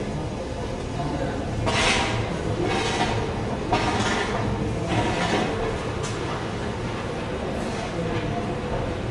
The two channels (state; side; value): identical; both; correlation 1.00